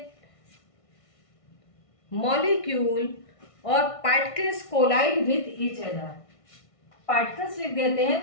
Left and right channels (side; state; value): right; late; 1.6 ms